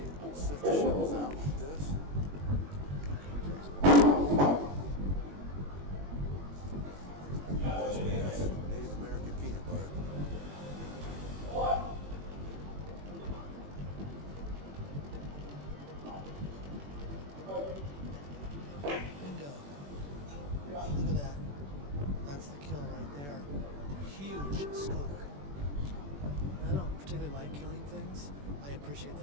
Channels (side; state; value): left; late; 21 ms